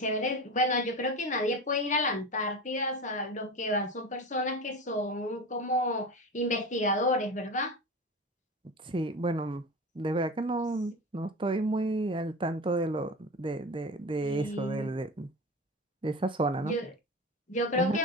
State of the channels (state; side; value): normal; both; correlation 0.28